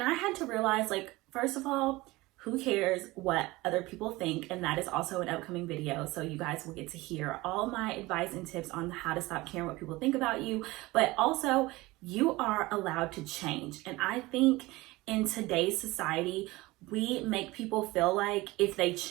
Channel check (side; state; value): left; quieter; 20.5 dB